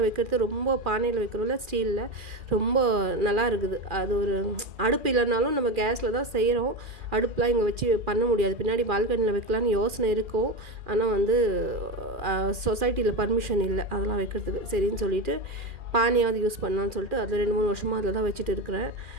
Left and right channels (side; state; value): left; late; 2.4 ms